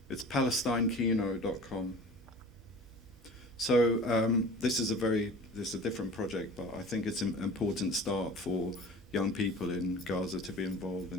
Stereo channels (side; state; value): both; normal; correlation 0.41